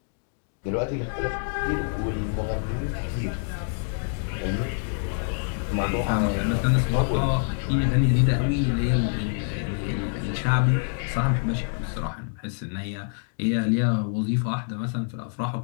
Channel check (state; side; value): silent; right; 61 dB below the other